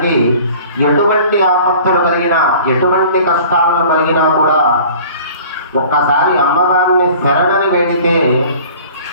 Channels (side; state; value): both; inverted; correlation -0.46